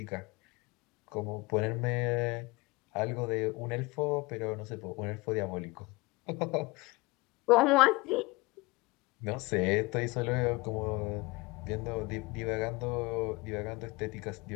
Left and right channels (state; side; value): quieter; right; 23.6 dB